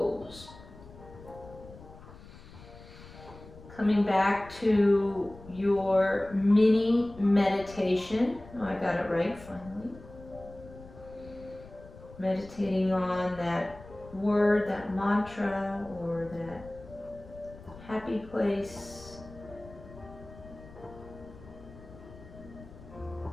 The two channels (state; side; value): noise; left; rumble, 18 dB below the sound